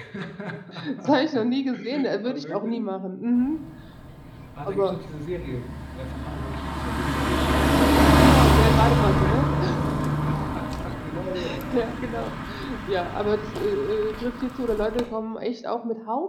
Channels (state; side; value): identical; both; correlation 1.00